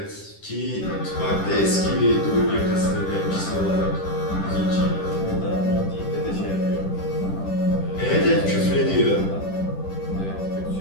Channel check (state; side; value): late; right; 10 ms